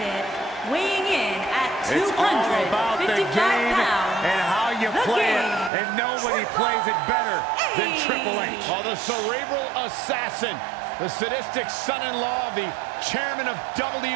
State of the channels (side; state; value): left; drops out; at 5.7 s